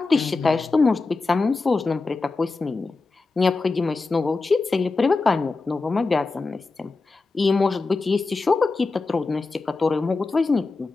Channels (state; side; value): quieter; right; 3.8 dB